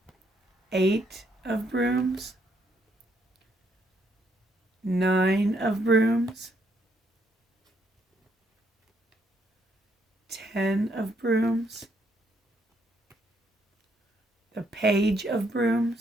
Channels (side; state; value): both; normal; correlation 0.73